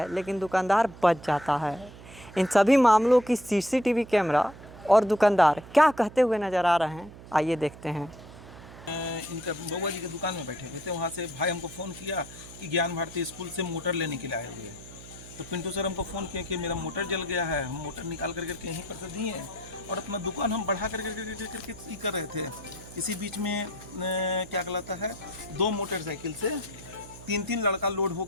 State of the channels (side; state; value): right; noise; hum, 17 dB below the sound